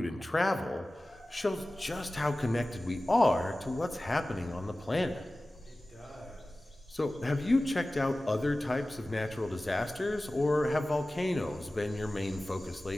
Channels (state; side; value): normal; both; correlation 0.97